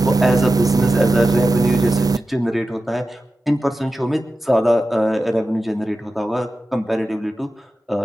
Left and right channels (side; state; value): both; normal; correlation 0.93